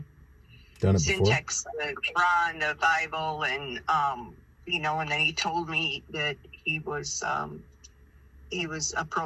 done it syntax the Quran, the Bible, and and then he told me that he was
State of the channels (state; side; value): identical; both; correlation 1.00